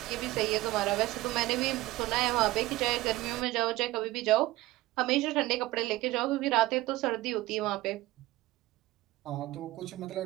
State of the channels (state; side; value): quieter; left; 18.0 dB